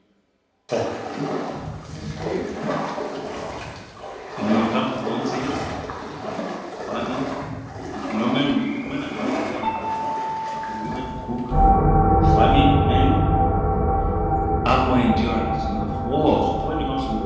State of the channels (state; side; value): identical; both; correlation 1.00